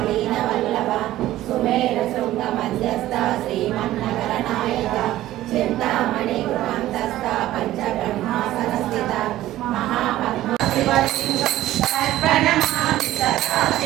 వల్లభ సుమేర శృంగ మధ్యస్థ శ్రీమన్నగర నాయక చింతామణి గృహంతస్థ పంచ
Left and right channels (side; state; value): left; quieter; 14.7 dB